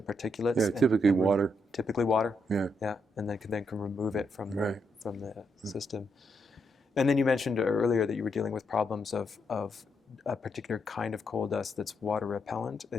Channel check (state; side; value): normal; both; correlation 0.80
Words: particulates. Yeah, typically water. Typically water. Yeah. Yeah, and then can remove it from right. from the system. And then you mentioned earlier that you were dealing with problems of a particular kind of coal dust that's water repellent.